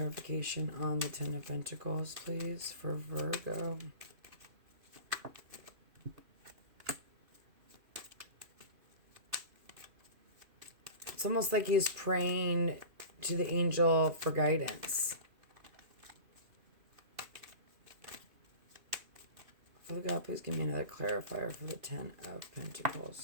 on the Ten of Pentacles, please, for Virgo. It's almost like he's praying to the angel for guidance. Father God, please give me another clarifier for the Ten of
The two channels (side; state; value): left; late; 2.8 ms